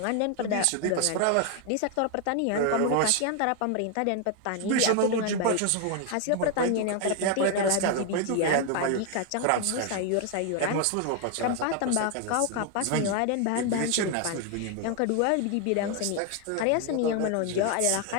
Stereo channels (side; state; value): both; different; correlation 0.01